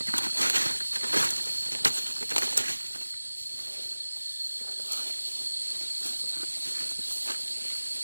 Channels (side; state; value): both; inverted; correlation -1.00